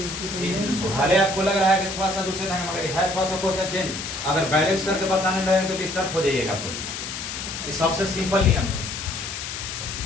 आपको लग रहा है कि थोड़ा सा दूसरे ढंग मगर है थोड़ा सा क्वेश्चन चेंज, अगर बैलेंस करके बताने लगे तो डिस्टर्ब हो जाइएगा आपको। ये सबसे सिंपल नियम,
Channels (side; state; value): left; noise; hiss, 6 dB below the sound